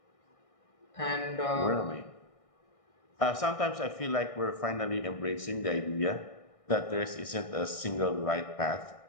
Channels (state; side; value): late; right; 1.6 ms